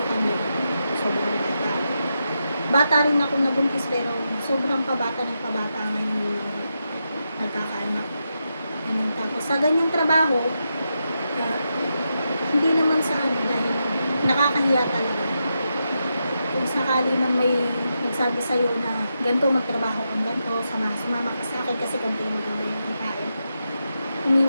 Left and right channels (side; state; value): both; inverted; correlation -0.86